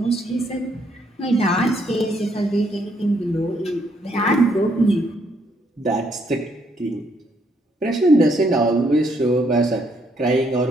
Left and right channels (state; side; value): normal; both; correlation 0.72